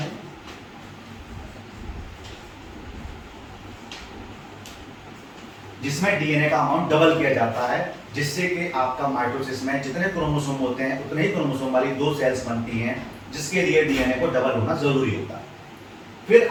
जिसमें डीएनए का अमाउंट डबल किया जाता है, जिससे कि आपका माइटोसिस में जितने क्रोमोसोम होते हैं उतने ही क्रोमोसोम वाली दो सेल्स बनती हैं, जिसके लिए डीएनए को डबल होना जरूरी होता है। फिर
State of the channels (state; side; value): identical; both; correlation 1.00